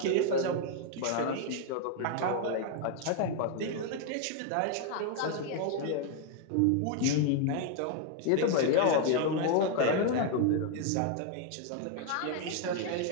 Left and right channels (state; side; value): different; both; correlation 0.01